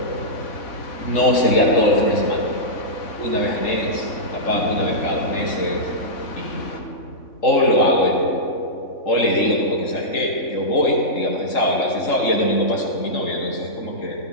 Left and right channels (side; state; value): right; late; 3.6 ms